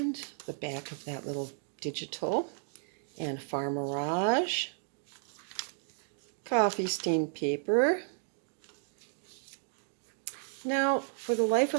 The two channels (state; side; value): silent; left; 56 dB below the other